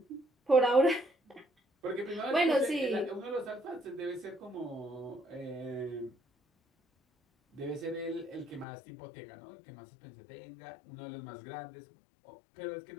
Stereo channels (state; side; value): drops out; right; at 8.7 s